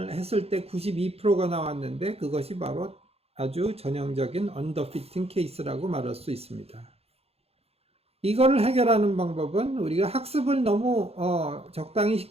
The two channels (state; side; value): late; left; 0.29 ms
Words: 했을 때 92%가 나왔는데 그것이 바로 아주 전형적인 언더피팅 케이스라고 말할 수 있습니다. 이거를 해결하는 방법은 우리가 학습을 너무 적당히